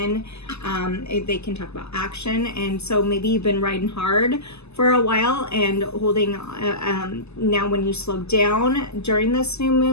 They can talk about action. And so maybe you've been riding hard for a while and holding, now when you slow down during this new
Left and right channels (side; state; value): right; late; 0.80 ms